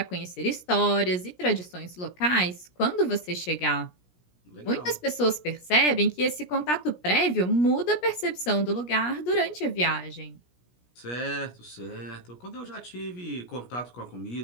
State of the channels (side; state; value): right; late; 17 ms